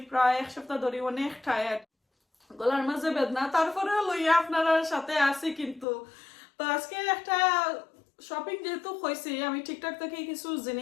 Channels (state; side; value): drops out; right; at 5.9 s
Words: প্রায় এক সপ্তাহ ধরে অনেক টায়ার্ড গলার মাঝে বেদনা তারপরে লইয়া আপনারা সাথে আছি কিন্তু তো আজকে একটা শপিং যেহেতু হয়েছে আমি ঠিকঠাক থেকে কিছু